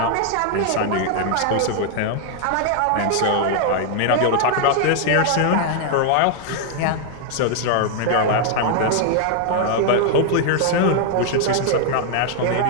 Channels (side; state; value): both; different; correlation 0.00